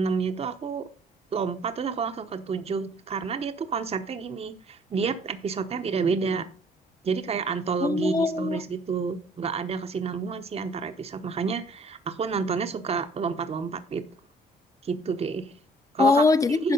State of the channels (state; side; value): normal; both; correlation 0.58